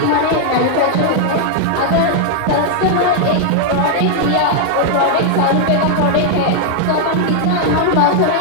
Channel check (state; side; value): different; both; correlation 0.00